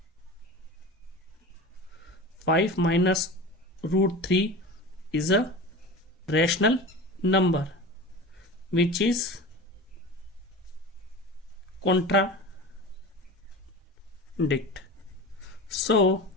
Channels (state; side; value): normal; both; correlation 0.32